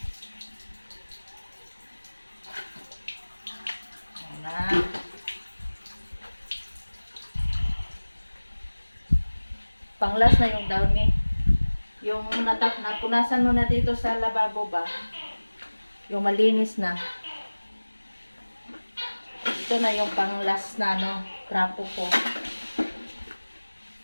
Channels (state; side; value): inverted; both; correlation -1.00